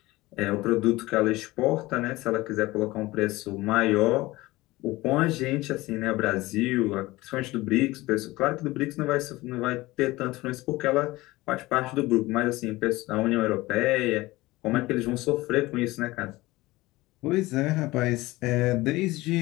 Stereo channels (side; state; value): right; quieter; 19.6 dB